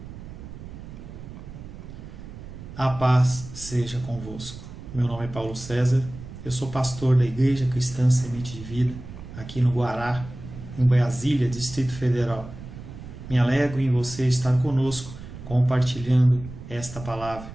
A paz seja convosco. Meu nome é Paulo César, eu sou pastor da Igreja Cristã Semente de Vida, aqui no Guará, em Brasília, Distrito Federal. Me alegro em você estar conosco, compartilhando esta palavra.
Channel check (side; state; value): right; noise; rumble, 13 dB below the sound